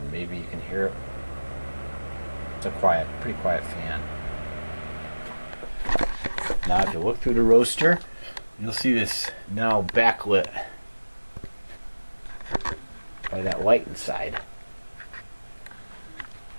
Maybe you can hear it. It's a pretty quiet fan. Now if you look through the roaster, you'll see this now backlit by that light inside.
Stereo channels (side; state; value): both; inverted; correlation -1.00